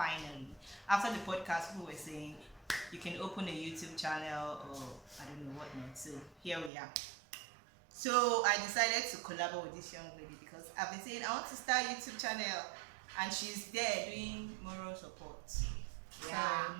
After the podcast, people were saying you can open a YouTube channel or I don't know what not. So here we are. So I decided to collaborate with this young lady because I've been saying I want to start a YouTube channel, and she's there doing moral support. Yeah. So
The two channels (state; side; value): drops out; left; at 6.7 s